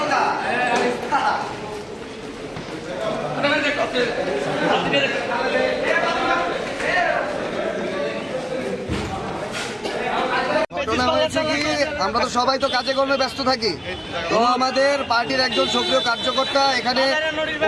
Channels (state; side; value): identical; both; correlation 1.00